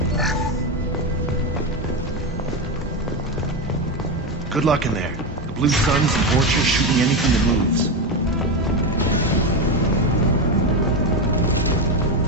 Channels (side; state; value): both; normal; correlation 0.13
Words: Good luck in there. The Blue Suns and Vorcha shooting anything that moves.